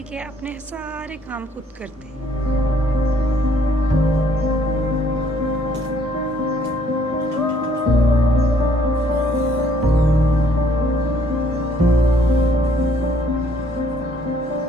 है। अपने सारे काम खुद करते हैं।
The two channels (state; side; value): normal; both; correlation 0.64